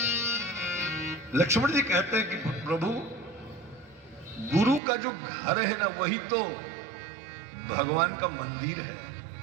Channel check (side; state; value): left; drops out; at 4.8 s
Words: लक्ष्मण जी कहते हैं कि प्रभु, गुरु का जो घर है ना, वही तो भगवान का मंदिर है।